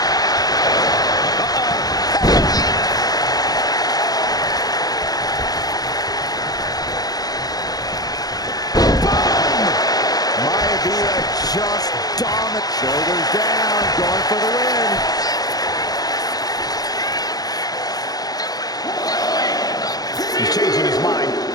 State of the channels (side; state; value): right; late; 0.19 ms